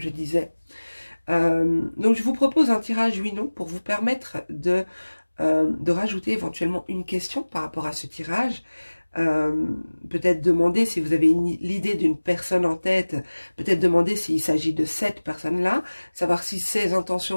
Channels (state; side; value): inverted; both; correlation -1.00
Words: disais. Donc, je vous propose un tirage oui-non pour vous permettre de rajouter éventuellement une question par rapport à ce tirage. Peut-être demander si vous avez l'idée d'une personne en tête, peut-être demander s'il s'agit de cette personne-là, savoir si ses